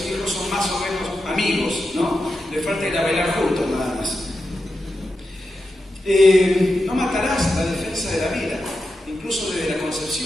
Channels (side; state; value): both; normal; correlation 0.89